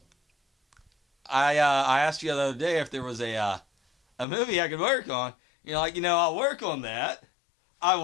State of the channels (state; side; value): drops out; right; at 4.2 s